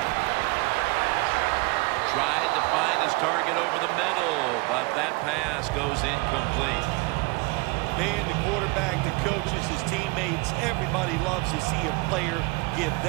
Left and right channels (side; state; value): left; quieter; 25.3 dB